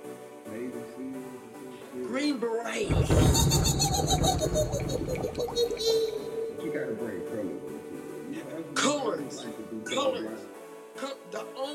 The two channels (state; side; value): identical; both; correlation 1.00